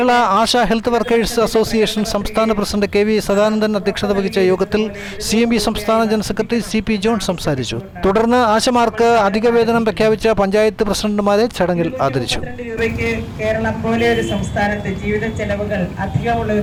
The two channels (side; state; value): both; identical; correlation 1.00